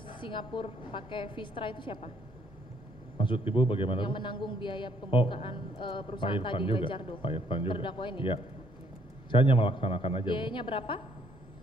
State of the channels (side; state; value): both; normal; correlation 0.67